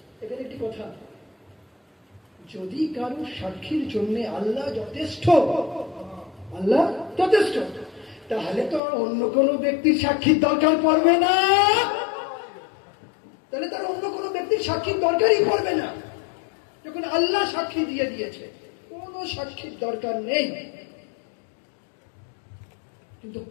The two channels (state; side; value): drops out; right; at 8.8 s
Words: এখানে একটি কথা, যদি কারো সাক্ষীর জন্য আল্লাহ যথেষ্ট, আল্লাহ যথেষ্ট, তাহলে তো আর অন্য কোনো ব্যক্তির সাক্ষীর দরকার পড়বে না। তাহলে তার অন্য কোনো ব্যক্তির সাক্ষীর দরকারই পড়বে না। যখন আল্লাহ সাক্ষী দিয়ে দিয়েছে, কোনো সাক্ষীর দরকার নেই। কিন্তু